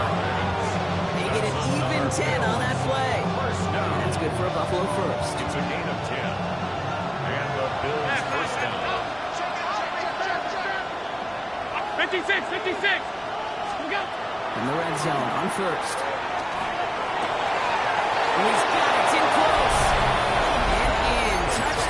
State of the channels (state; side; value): identical; both; correlation 1.00